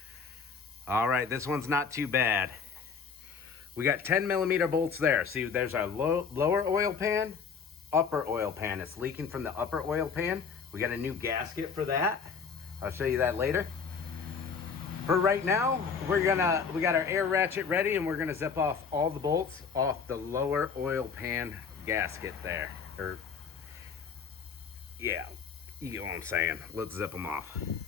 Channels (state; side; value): quieter; right; 5.9 dB